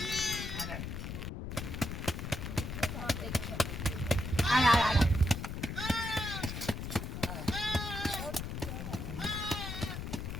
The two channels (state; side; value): noise; left; rumble, 5 dB below the sound